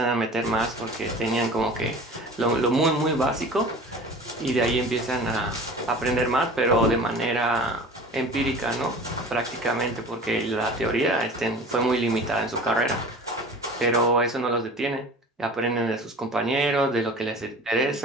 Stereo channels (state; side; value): normal; both; correlation 0.40